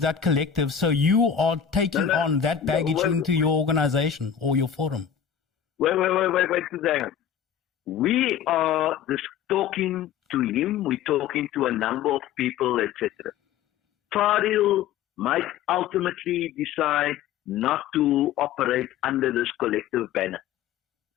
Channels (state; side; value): quieter; right; 8.7 dB